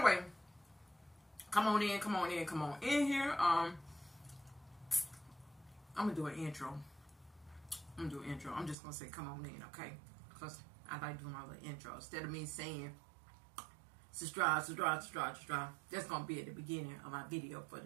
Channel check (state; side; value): drops out; left; at 8.8 s